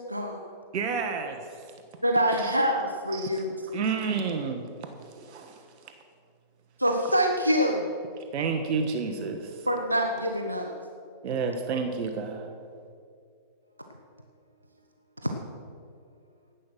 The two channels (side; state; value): both; inverted; correlation -0.46